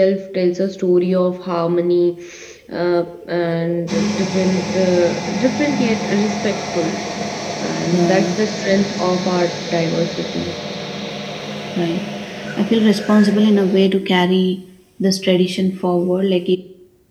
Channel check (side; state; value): both; identical; correlation 1.00